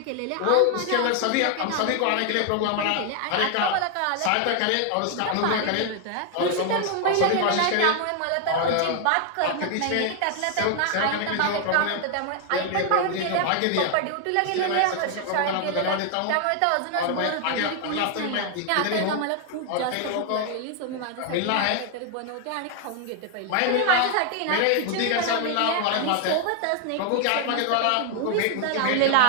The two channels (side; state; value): both; different; correlation 0.00